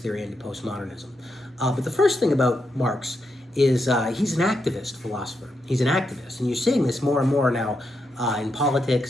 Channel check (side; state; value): both; normal; correlation 0.83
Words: and to postmodernism. But the first thing about Marx is he's an activist philosopher. He's an activist, and you're seeing this more and more now in